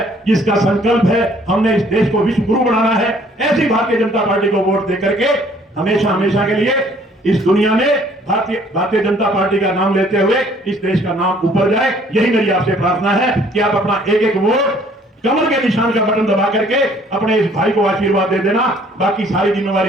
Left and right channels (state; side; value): normal; both; correlation 0.59